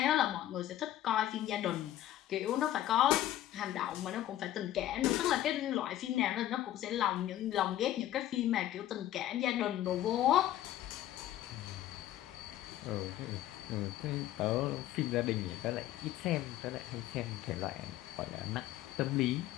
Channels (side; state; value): right; quieter; 13.2 dB